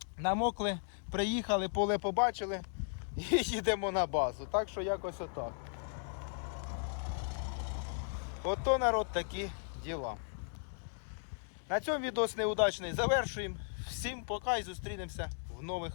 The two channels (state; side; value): silent; right; 54 dB below the other